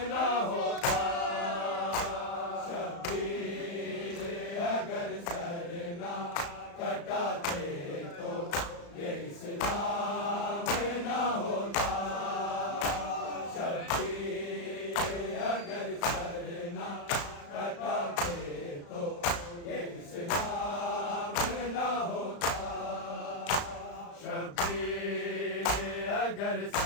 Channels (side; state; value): right; late; 35 ms